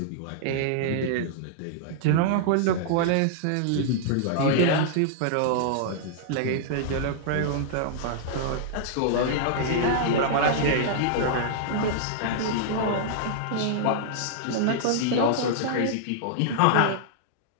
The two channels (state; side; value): different; both; correlation -0.01